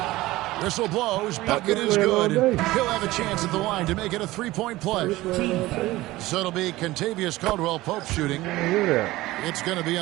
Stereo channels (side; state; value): left; quieter; 18.1 dB